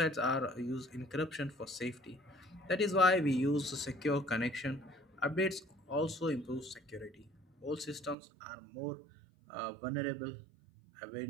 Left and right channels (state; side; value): drops out; left; at 8.2 s